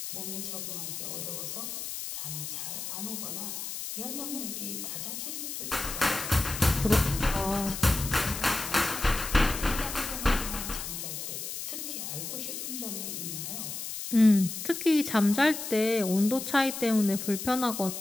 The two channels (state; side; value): noise; left; hiss, 6 dB below the sound